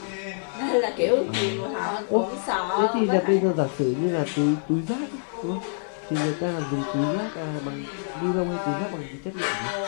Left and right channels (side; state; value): right; silent; digital silence